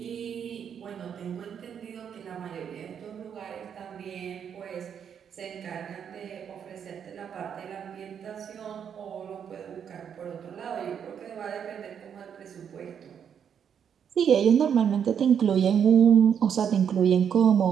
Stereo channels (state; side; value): quieter; left; 8.0 dB